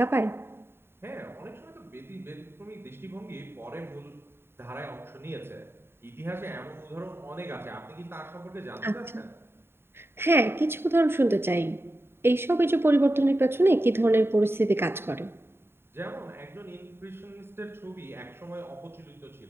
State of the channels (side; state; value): left; late; 0.11 ms